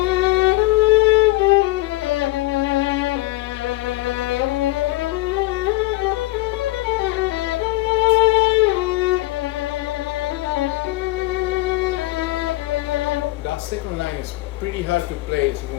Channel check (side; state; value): right; quieter; 19.5 dB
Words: That second line is pretty hard to play